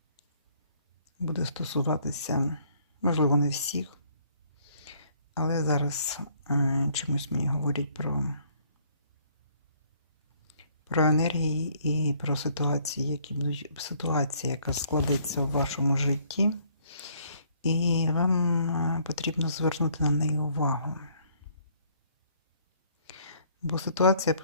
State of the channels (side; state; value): both; inverted; correlation -0.63